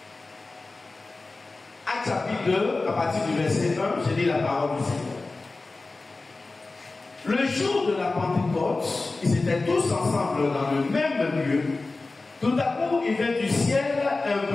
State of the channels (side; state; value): right; quieter; 3.5 dB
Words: Actes chapitre 2, à partir du verset 1, je lis la parole du Seigneur. Le jour de la Pentecôte, ils étaient tous ensemble dans le même lieu. Tout à coup, il vint du ciel un